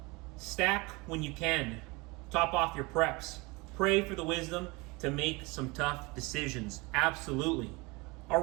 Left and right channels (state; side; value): quieter; left; 25.5 dB